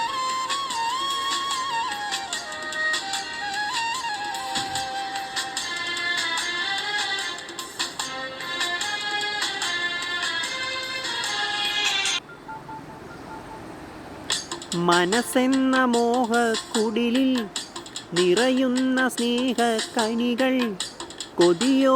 മനസ്സെന്ന മോഹക്കുടിലിൽ നിറയുന്ന സ്നേഹക്കനികൾ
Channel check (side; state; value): both; identical; correlation 1.00